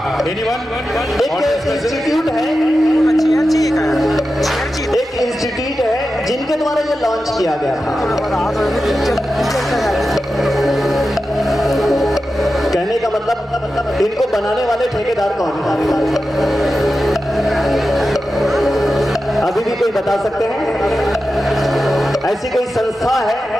एनीवन? एक इंस्टीट्यूट है, एक इंस्टीट्यूट है जिनके द्वारा ये लॉन्च किया गया था। कहने का मतलब इनको बनाने वाले ठेकेदार कौन? अभी भी कोई बता सकते हैं? ऐसी कोई संस्था है?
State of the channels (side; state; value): both; normal; correlation 0.92